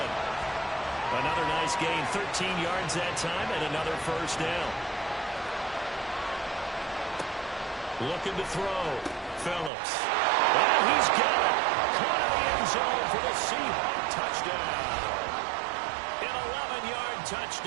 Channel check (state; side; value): drops out; left; at 9.7 s